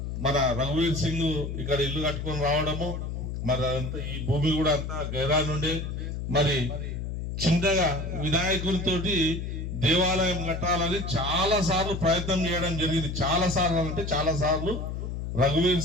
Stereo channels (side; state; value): left; noise; hum, 5 dB below the sound